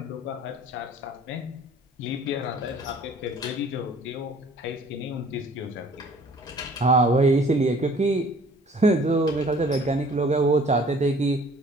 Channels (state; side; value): normal; both; correlation 0.53